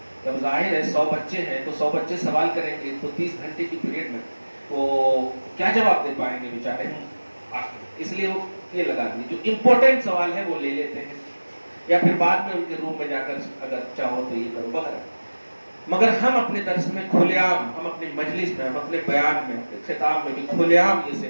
جب ظاہر ہے 100 بچے ہیں تو 100 بچے سوال کریں گے تو 30 گھنٹے کی پیریڈ میں وہ کیا جواب دے پائیں گے بیچارے. اس لیے وہ یہ لگا دیے جو امپورٹنٹ سوال ہے وہ لے لیتے ہیں، یا پھر بعد میں ان کے روم میں جا کر اگر چاہو تو یہ کرو وغیرہ. مگر ہم اپنے درس میں کھلے عام، ہم اپنی مجلس میں، ہم اپنے بیان میں، اپنے خطاب میں بھی کھلے عام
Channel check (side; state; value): both; inverted; correlation -1.00